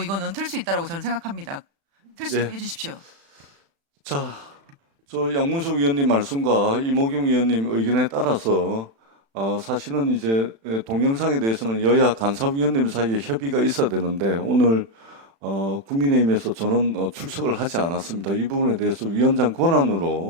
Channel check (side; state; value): left; late; 36 ms